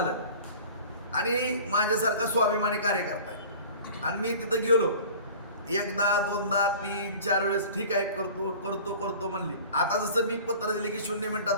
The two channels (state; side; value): inverted; both; correlation -0.42